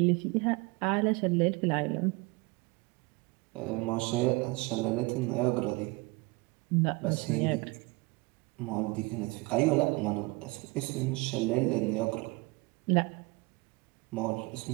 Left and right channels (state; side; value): quieter; left; 25.2 dB